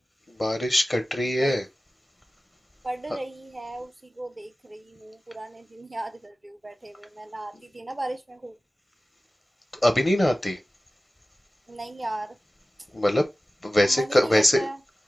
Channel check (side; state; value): both; normal; correlation 0.96